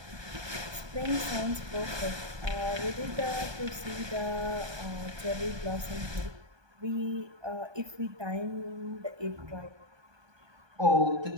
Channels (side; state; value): left; late; 1.2 ms